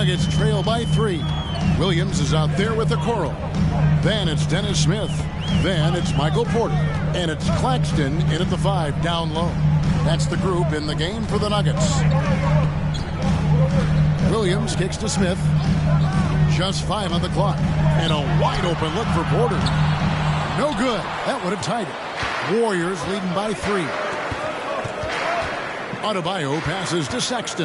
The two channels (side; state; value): both; identical; correlation 1.00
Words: trail by 3. Williams is out there with the Coral. Then it's Dennis Smith. Then it's Michael Porter. And it's Claxton in at the 5 down low. That's the group in the game for the Nuggets. Williams kicks to Smith. Just 5 on the clock. And a wide open look for Porter. No good. That would have tied it. Warriors leading by 3. Adebayo passes to